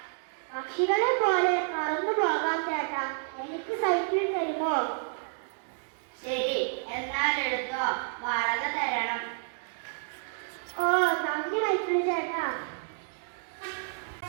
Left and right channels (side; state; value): left; silent; digital silence